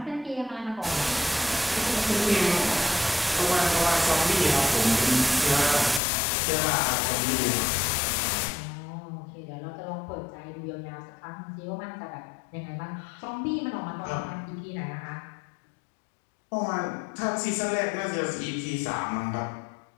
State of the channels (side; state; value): right; drops out; at 6.0 s